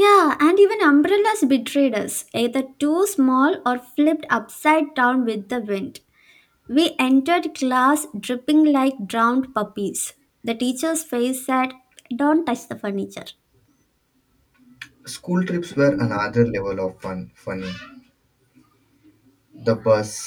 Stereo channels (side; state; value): both; identical; correlation 1.00